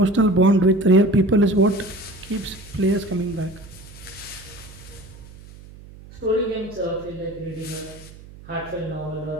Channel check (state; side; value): noise; right; hum, 19 dB below the sound